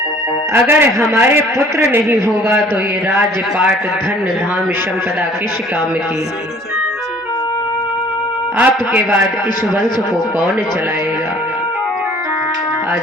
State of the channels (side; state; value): both; normal; correlation 0.53